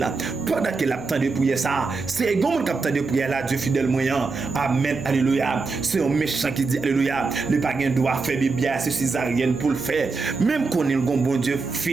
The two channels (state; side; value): quieter; left; 4.2 dB